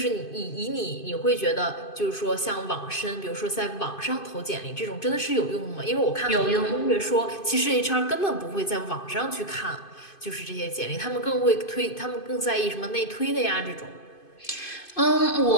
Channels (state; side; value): late; right; 2.5 ms